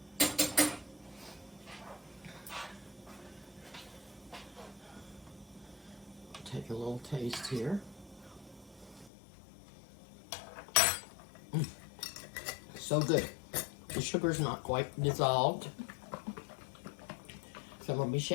Take a little taste here. So good. The sugar's not quite dissolved. So I'm going to be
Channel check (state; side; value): drops out; right; at 9.1 s